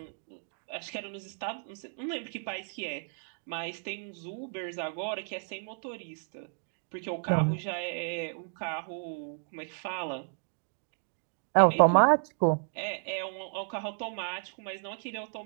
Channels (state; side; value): silent; left; digital silence